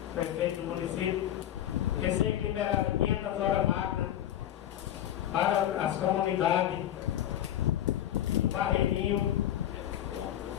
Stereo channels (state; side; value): quieter; right; 11.7 dB